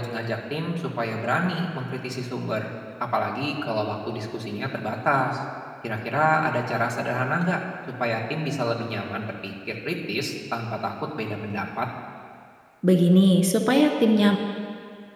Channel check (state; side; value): identical; both; correlation 1.00